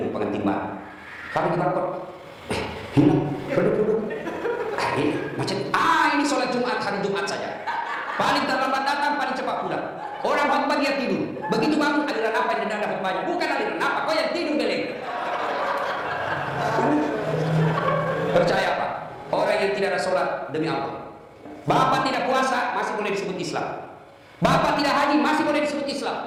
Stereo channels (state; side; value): identical; both; correlation 1.00